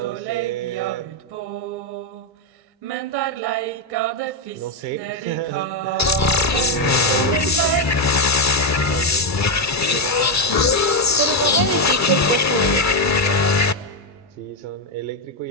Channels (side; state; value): both; normal; correlation 0.04